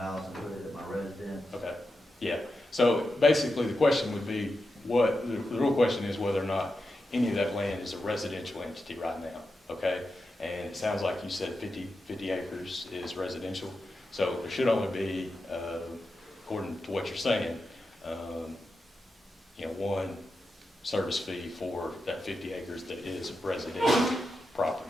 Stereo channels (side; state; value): both; normal; correlation 0.89